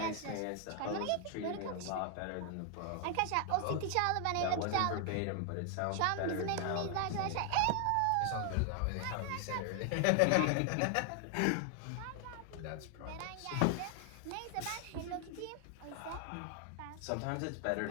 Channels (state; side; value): different; both; correlation 0.00